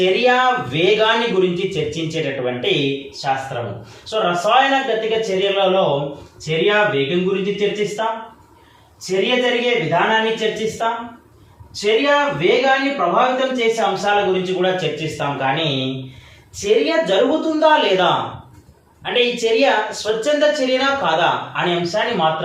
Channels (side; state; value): both; identical; correlation 1.00